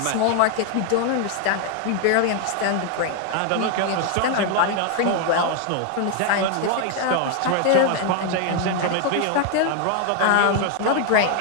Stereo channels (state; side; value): different; both; correlation 0.00